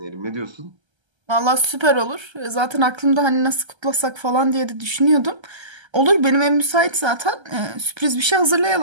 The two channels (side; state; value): left; late; 1.3 ms